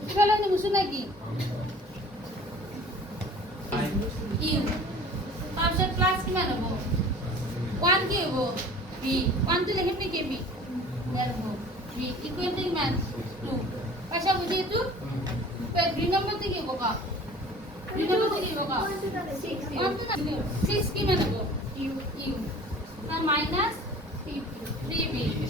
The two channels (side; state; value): both; normal; correlation 0.45